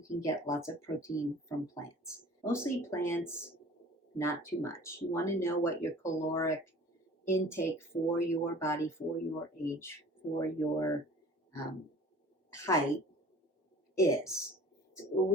can get lots of protein from plants. Mostly plants, not too much. You want to know what your caloric intake for your body, for your age, for your height is.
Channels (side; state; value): both; normal; correlation 0.46